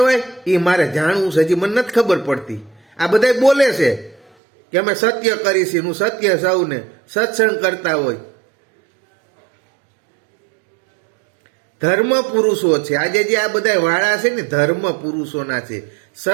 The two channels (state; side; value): drops out; left; at 4.3 s